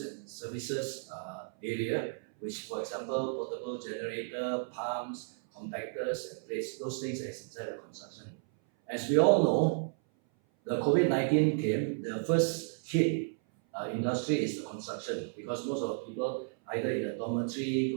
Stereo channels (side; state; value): left; silent; 56 dB below the other